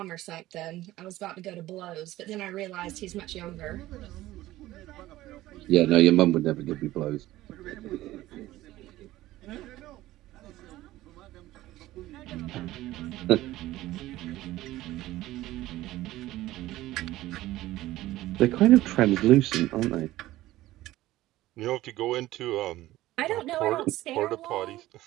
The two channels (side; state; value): left; quieter; 16.2 dB